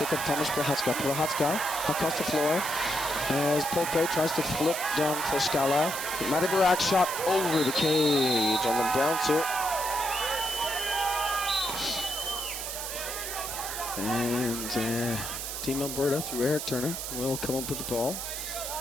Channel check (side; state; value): right; noise; hiss, 5 dB below the sound